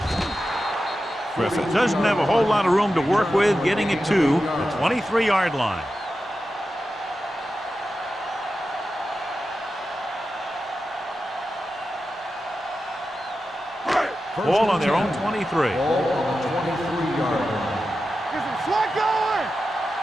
Griffith doesn't have a whole lot of room to work with, getting it to the 23-yard line. Ball on their own 23. Ball on the 23-yard line. Get some slack going.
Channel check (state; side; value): normal; both; correlation 0.91